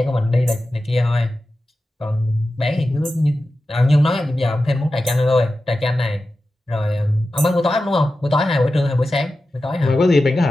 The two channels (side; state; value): both; normal; correlation 0.93